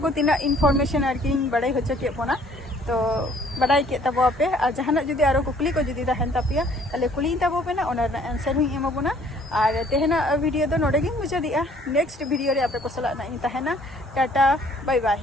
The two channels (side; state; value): both; normal; correlation 0.58